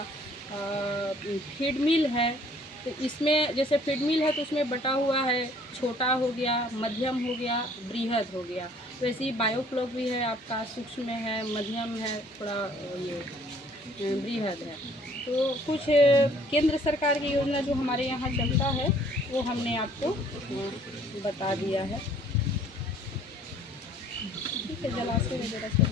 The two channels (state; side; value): normal; both; correlation 0.58